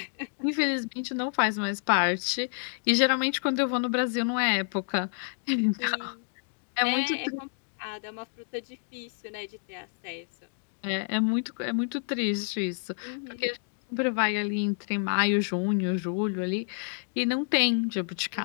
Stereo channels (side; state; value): right; silent; digital silence